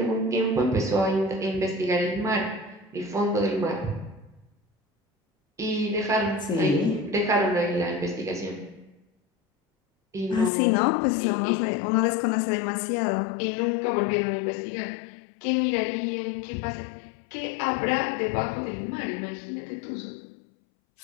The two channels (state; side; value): drops out; right; at 10.5 s